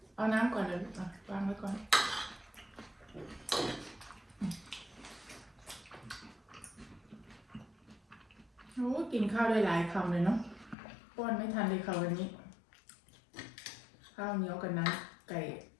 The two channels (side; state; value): right; drops out; at 10.8 s